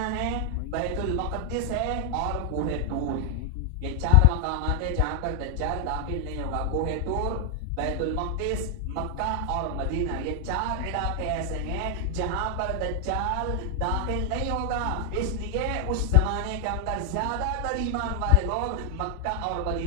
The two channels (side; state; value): both; different; correlation 0.00